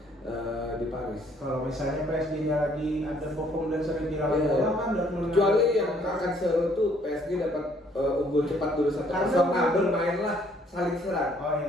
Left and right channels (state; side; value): normal; both; correlation 0.64